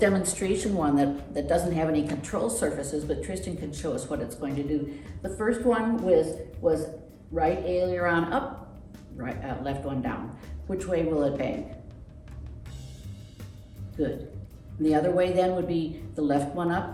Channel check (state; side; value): identical; both; correlation 1.00